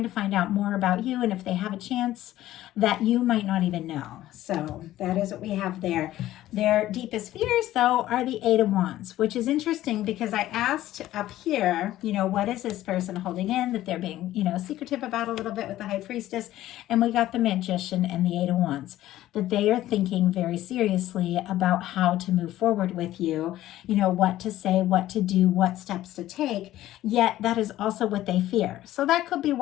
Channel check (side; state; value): right; quieter; 14.3 dB